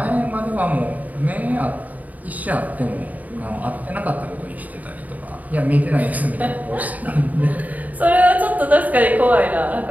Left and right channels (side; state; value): left; late; 0.075 ms